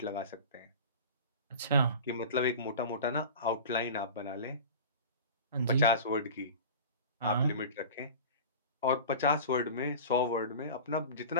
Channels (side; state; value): both; inverted; correlation -0.34